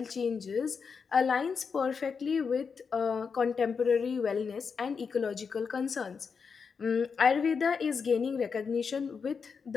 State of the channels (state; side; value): quieter; right; 5.7 dB